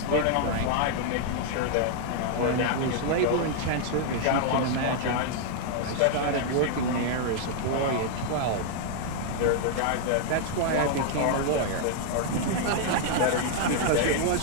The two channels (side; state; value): both; different; correlation -0.01